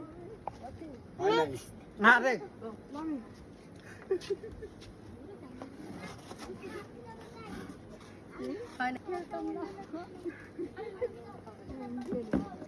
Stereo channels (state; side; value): identical; both; correlation 1.00